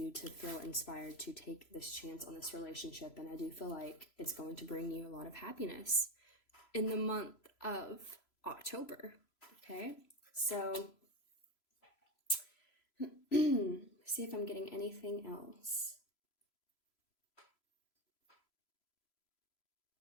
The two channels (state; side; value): late; right; 3.0 ms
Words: to feel inspired to take this chance on this relationship. And I do feel like it's going to bring you a lot of happiness in the month of October. Okay, so see if I'm getting anything else.